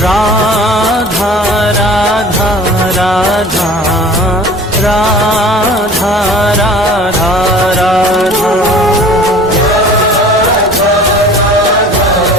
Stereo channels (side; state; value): both; normal; correlation 0.44